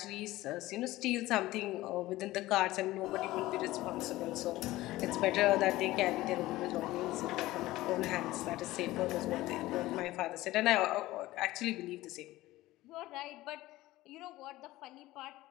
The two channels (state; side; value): quieter; right; 17.4 dB